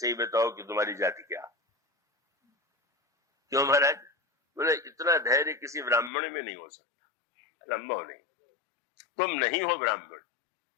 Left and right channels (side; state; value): right; drops out; at 6.1 s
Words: बताओ कि तुम्हारी जाति क्या? क्यों महाराज? बोले इतना धैर्य किसी ब्राह्मण में नहीं हो सकता, संभव नहीं, तुम नहीं हो ब्राह्मण।